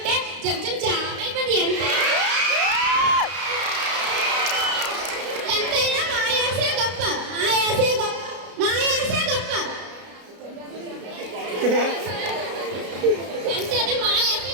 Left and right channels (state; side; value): late; left; 33 ms